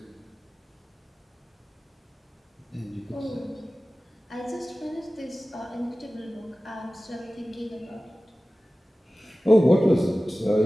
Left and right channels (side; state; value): both; normal; correlation 0.97